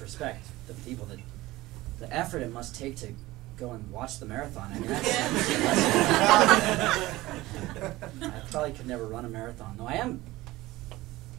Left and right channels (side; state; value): left; quieter; 18.5 dB